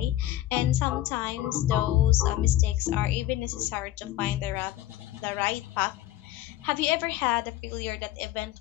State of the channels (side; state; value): right; quieter; 14.3 dB